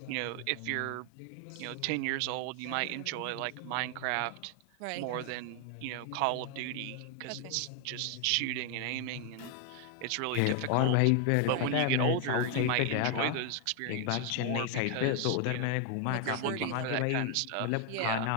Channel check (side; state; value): both; different; correlation 0.01